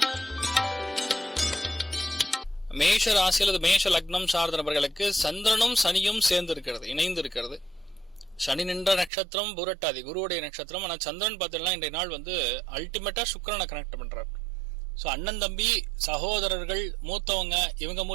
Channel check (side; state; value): left; drops out; at 9.1 s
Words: மேஷ ராசி அல்லது மேஷ லக்னம் சார்ந்த நபர்களுக்கு சந்திரனும் சனியும் சேர்ந்து இருக்கிறது, இணைந்து இருக்கிறது. சனி நின்ற நட்சத்திரம் புரட்டாதி, குருவுடைய நட்சத்திரம். ஆனா சந்திரன் பார்த்தீங்கன்னா இன்றைய நாள் அல்டிமேட்டா சுக்கிரனை கனெக்ட் பண்றார். ஸோ அண்ணன் தம்பி சகோதரர்கள் மூத்தவங்க இவங்க